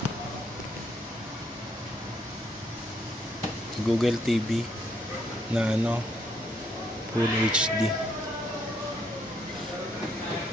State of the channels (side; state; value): both; normal; correlation 0.72